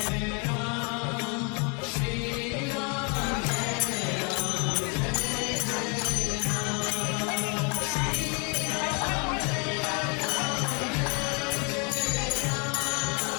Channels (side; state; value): right; quieter; 34.2 dB